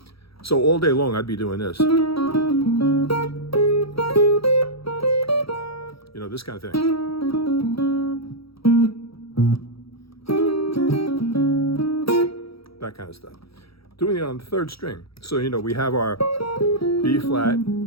So all day long, I'd be doing this. This kind of thing. That kind of stuff. Doing it on the 3rd string. So, we have our B flat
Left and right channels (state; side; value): late; right; 0.76 ms